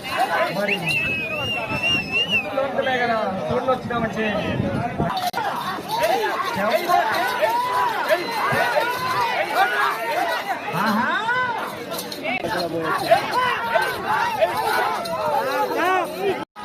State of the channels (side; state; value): both; identical; correlation 1.00